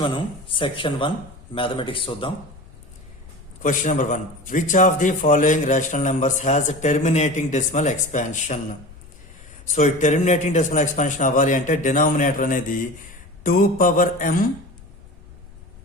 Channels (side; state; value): left; noise; rumble, 21 dB below the sound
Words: మనం సెక్షన్ 1 మ్యాథమెటిక్స్ చూద్దాం. Question number 1, which of the following rational numbers has terminating decimal expansion? So ఈ టెర్మినేటింగ్ డెసిమల్ ఎక్స్పాన్షన్ అవ్వాలి అంటే డినామినేటర్ అనేది 2 power m